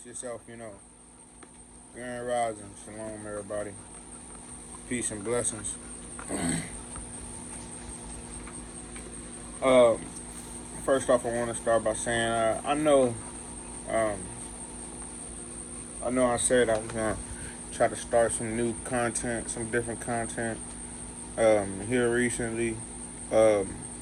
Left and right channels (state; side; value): identical; both; correlation 1.00